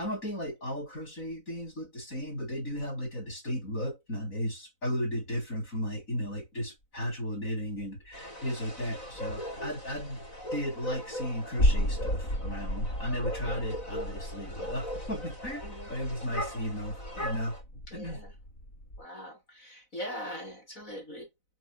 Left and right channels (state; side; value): late; right; 4.0 ms